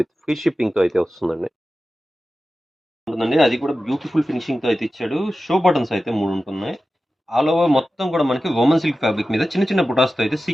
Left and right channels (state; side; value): normal; both; correlation 0.94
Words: ఫ్రీ షిప్పింగ్‌తో అయితే వస్తుందండి. ఉంటుందండి. అది కూడా బ్యూటిఫుల్ ఫినిషింగ్‌తో అయితే ఇచ్చాడు. షో బటన్స్ అయితే 3 ఉంటున్నాయి. ఆల్ ఓవర్ మొత్తం కూడా మనకి వోమన్ సిల్క్ ఫ్యాబ్రిక్ మీద చిన్న చిన్న బుటాస్‌తో అయితే